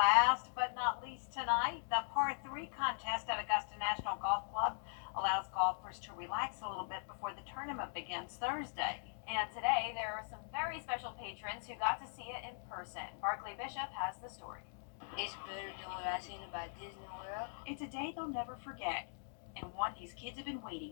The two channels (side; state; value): right; silent; digital silence